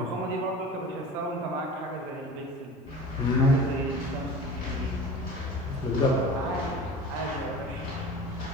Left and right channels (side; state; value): both; normal; correlation 0.37